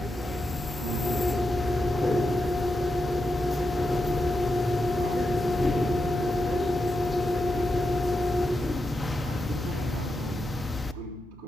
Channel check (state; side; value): normal; both; correlation 0.87